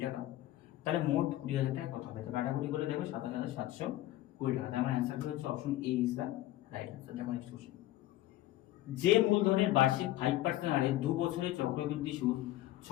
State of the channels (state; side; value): quieter; right; 15.1 dB